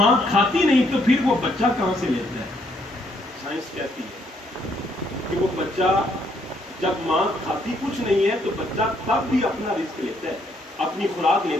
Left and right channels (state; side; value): normal; both; correlation 0.71